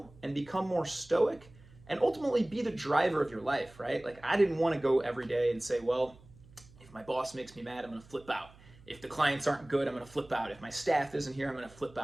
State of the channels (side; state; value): right; noise; hum, 24 dB below the sound